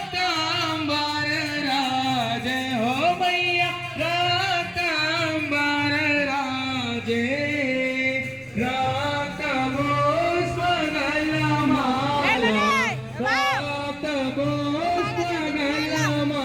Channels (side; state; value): both; identical; correlation 1.00